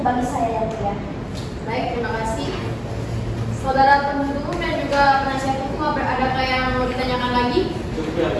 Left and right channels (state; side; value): identical; both; correlation 1.00